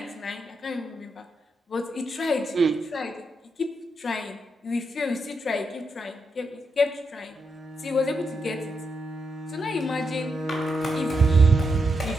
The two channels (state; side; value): normal; both; correlation 0.83